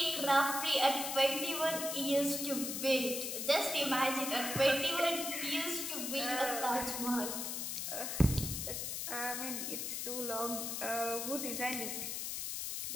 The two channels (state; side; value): noise; left; hiss, 3 dB below the sound